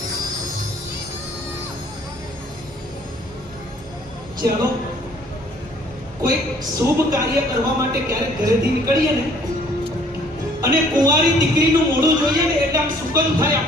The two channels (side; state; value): both; normal; correlation 0.58